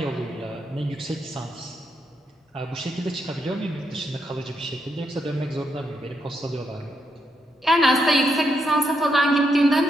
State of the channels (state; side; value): normal; both; correlation 0.79